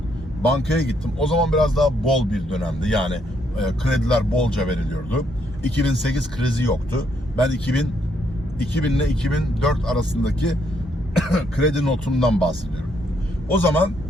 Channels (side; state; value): both; normal; correlation 0.73